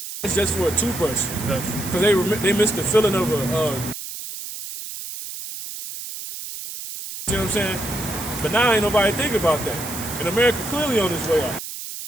It's just for a toothbrush because they missed the feeling of a. You see what I'm saying? But now ain't nobody think about that. And America clearly on its way out.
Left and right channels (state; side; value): noise; right; hiss, 9 dB below the sound